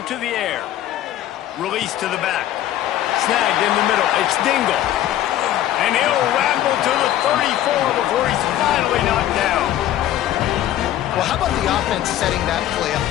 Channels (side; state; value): right; quieter; 12.7 dB